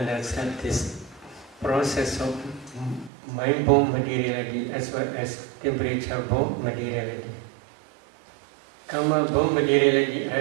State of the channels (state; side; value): drops out; left; at 3.1 s